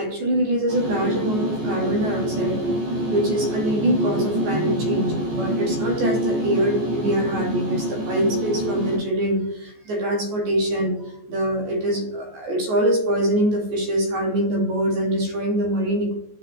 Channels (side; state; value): left; late; 14 ms